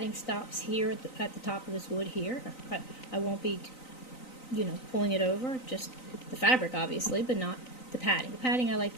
stops here at the top of this wood here. I won't be, pulling it over, just the fabric obviously, but not the padding. The padding I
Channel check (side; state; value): right; late; 3.9 ms